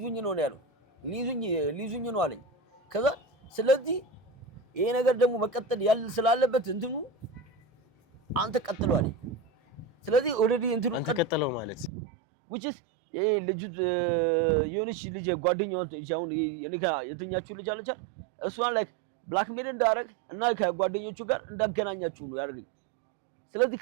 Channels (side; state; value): left; drops out; at 11.9 s